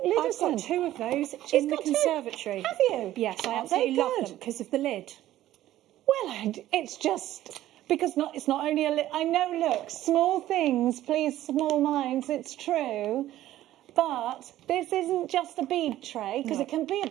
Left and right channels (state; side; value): quieter; left; 13.9 dB